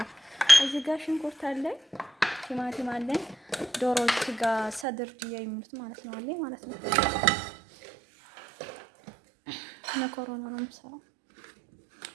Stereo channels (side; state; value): left; drops out; at 4.9 s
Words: እዚህ ጋር ሽንኩርት አለኝ፣ ቲማቲም አለኝ፣ ዶሮ ስጋ ሰድር ድያ የሚሉት ማለት ነው አለኝ ማለት ነው። መኮረኒ ነው የምሰራው።